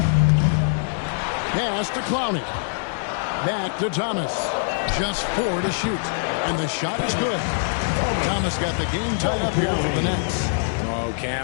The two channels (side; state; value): right; silent; digital silence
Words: Pass to Clowney. Back to Thomas. Just 4 to shoot. And the shot is good. Thomas got the game tied up here for the Nets. Oh,